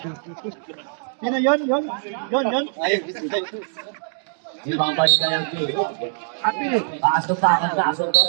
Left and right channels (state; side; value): silent; left; digital silence